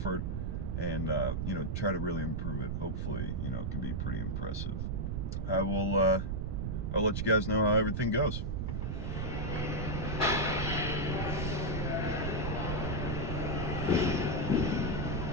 and, try to really improve it, hopefully, it can be pretty impressive. I'll let you guys know how everything goes.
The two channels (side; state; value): right; noise; rumble, 2 dB below the sound